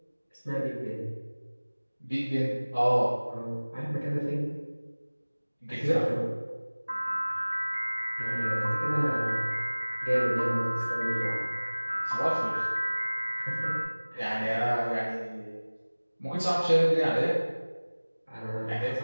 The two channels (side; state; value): both; inverted; correlation -1.00